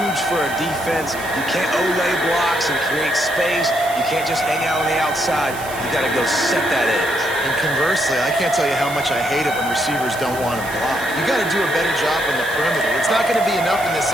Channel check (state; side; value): noise; right; hiss, 14 dB below the sound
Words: for a defense. You can't olay blocks and create space. You can't just hang out on the outside. You got to go set that edge. And conversely, I can't tell you how much I hate it when receivers don't want to block. You got to do a better job on the perimeter. It's not going to be enough in this